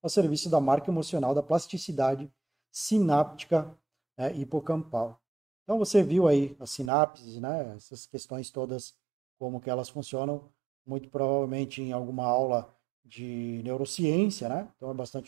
serviço da marca emocional da plasticidade sináptica, né, hipocampal. Então você viu aí as sinapses, né, essas questões todas, como que elas funcionam, muito provavelmente em alguma aula de neurociência, né? Então é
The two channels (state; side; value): drops out; left; at 6.9 s